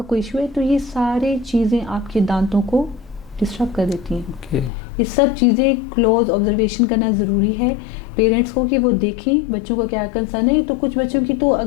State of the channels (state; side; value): drops out; right; at 4.7 s